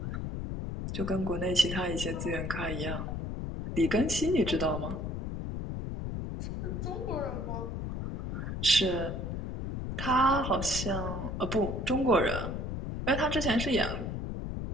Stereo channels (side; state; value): left; noise; rumble, 4 dB below the sound